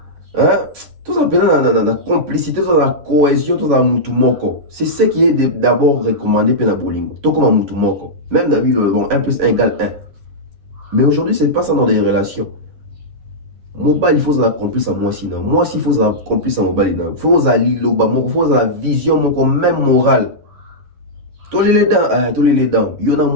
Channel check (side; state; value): left; late; 11 ms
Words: tout ça dans la complicité, dans la cohésion, dans la mutumoko. C'est ce qui est d'abord recommandé pour la bolingo. Tout comme un mutumoko. Même dans la vie, bon, 1 plus 1 égale 1. Mais aujourd'hui, c'est pas ça dans les relations. Mobile, il faut la complice à moi sinon. Moi aussi, il faut la complice à mobile. Il faut la liloba, il faut la vision, même morale. Tous les dents. Il y en